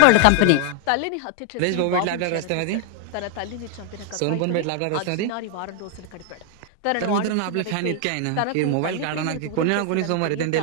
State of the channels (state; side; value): different; both; correlation 0.00